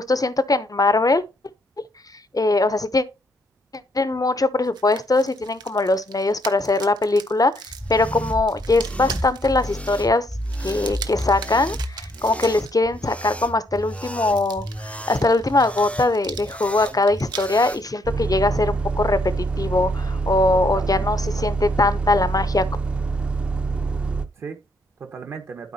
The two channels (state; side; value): normal; both; correlation 0.71